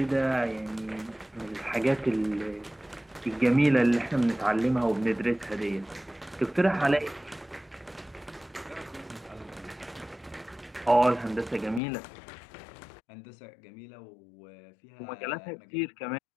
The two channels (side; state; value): right; drops out; at 11.8 s